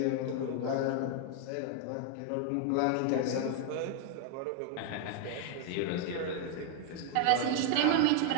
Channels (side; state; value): both; different; correlation 0.00